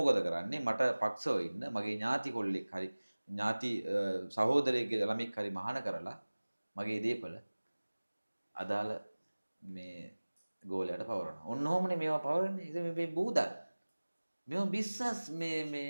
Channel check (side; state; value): both; inverted; correlation -1.00